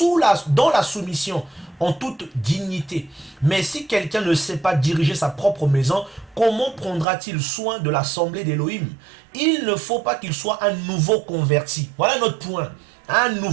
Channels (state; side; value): drops out; left; at 7.1 s